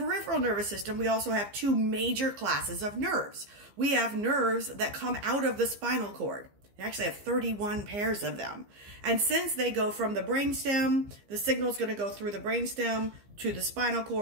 nervous system, we also have two major classes of nerves. We have nerves that come out of the spinal cord. We actually have 31 pairs of them. And since they go from the brainstem, the signal is going to go through the brainstem to the spinal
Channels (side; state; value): left; late; 15 ms